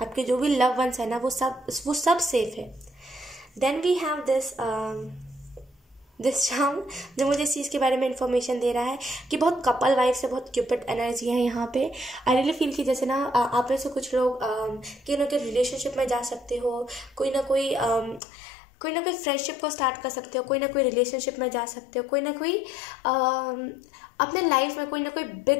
आपके जो भी लव वंस है ना वो सब सेफ है। Then we have this charm जो मुझे इस चीज़ के बारे में इंफॉर्मेशन दे रहा है कि बहुत कपल वाइफ से बहुत क्यूपिड एनर्जी है यहाँ पे। आई रियली फील कि जैसे ना आप में से कुछ लोग कि ना कि रिलेशनशिप में जा सकते हो, कोई ना कोई फ्रेंडशिप को स्टार्ट कर सकते हो, कोई ना कोई रिलेशनशिप में जा सकते हो, कोई ना कोई अपने लाइफ में कोई ना कोई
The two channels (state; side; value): drops out; right; at 18.2 s